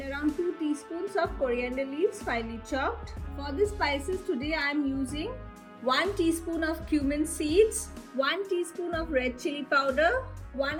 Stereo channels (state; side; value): identical; both; correlation 1.00